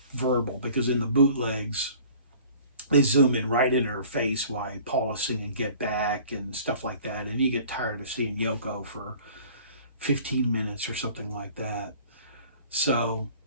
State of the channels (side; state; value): both; inverted; correlation -0.48